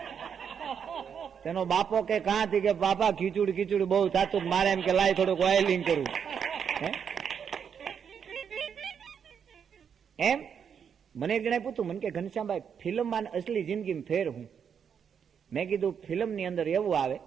તેનો બાપો કે કાંથી કે બાપા ખીચુડ ખીચુડ બહુ થાતું, મારે એમ કે લાય થોડુંક ઓઇલિંગ કરું. એમ મને એક જણાએ પૂછ્યું, મને કે ઘનશ્યામભાઈ ફિલ્મમાં અસલી જિંદગીમાં ફેર હું? મેં કીધું ફિલ્મની અંદર એવું આવે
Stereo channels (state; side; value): quieter; left; 7.4 dB